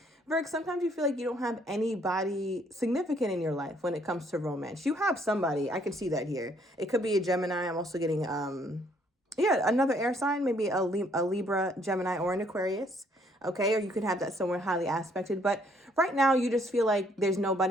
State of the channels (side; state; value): both; normal; correlation 0.66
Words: Virg, sometimes you feel like you don't have anybody significant in your life when it comes to romance. You have somebody. I can see that here. It could be a Gemini. I'm also getting, another air sign, maybe a Libra, Gemini, or an Aquarius. Okay, or you could have that somewhere highly aspected. But right now, you just feel like there's